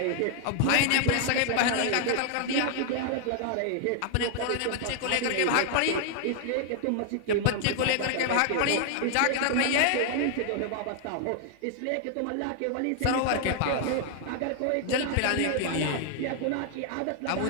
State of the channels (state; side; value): different; both; correlation 0.00